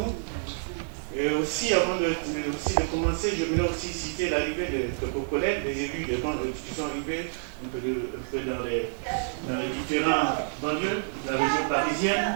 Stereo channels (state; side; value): silent; left; 59 dB below the other